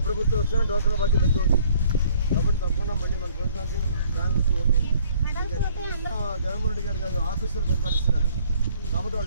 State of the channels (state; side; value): inverted; both; correlation -0.59